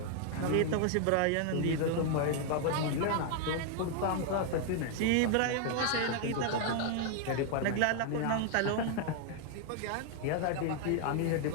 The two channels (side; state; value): both; different; correlation 0.00